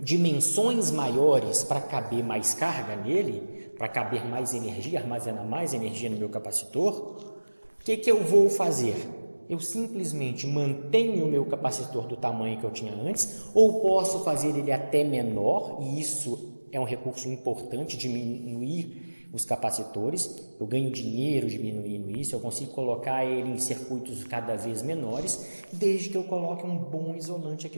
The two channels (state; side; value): inverted; both; correlation -1.00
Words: dimensões maiores para caber mais carga nele, para caber mais energia, armazenar mais energia no meu capacitor, o que eu vou fazer? Eu simplesmente mantenho o meu capacitor do tamanho que eu tinha antes, ou posso fazer ele até menor, e isso é um recurso importante, diminuir os capacitores. Eu ganho dinheiro diminuindo isso, eu consigo colocar ele em circuitos cada vez menores, desde que eu coloque um bom isolante